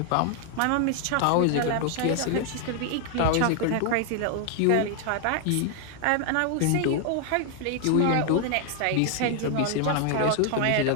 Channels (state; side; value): different; both; correlation 0.00